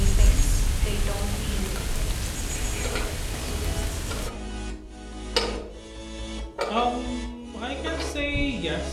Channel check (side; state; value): both; identical; correlation 1.00